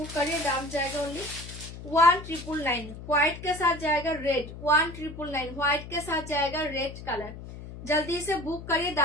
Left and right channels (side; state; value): left; noise; hum, 12 dB below the sound